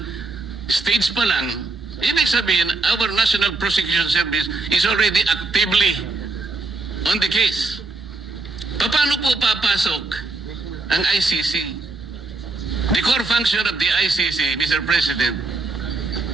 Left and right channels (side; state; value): left; quieter; 3.4 dB